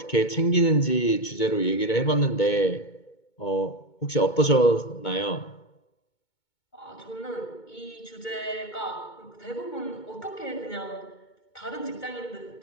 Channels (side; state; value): right; late; 2.2 ms